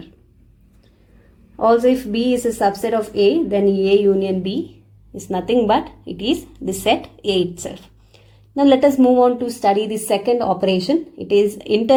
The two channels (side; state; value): both; identical; correlation 1.00